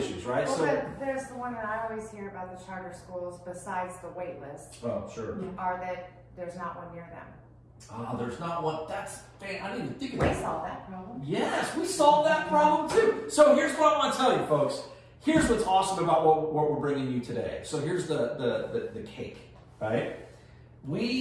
right? Well, So but there's the one that I always hear about the charter schools, besides the wait list, oh, sure. are that there's not one near them. There's not one. That's, man, I didn't even think of We that. solved that problem. Yes, we solved that problem too. So here's what I want to tell you, folks. Here's what's awesome about what we're bringing you today. So here's the cake, right?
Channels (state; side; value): identical; both; correlation 1.00